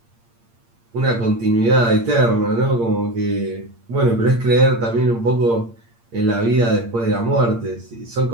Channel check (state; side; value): late; left; 8.7 ms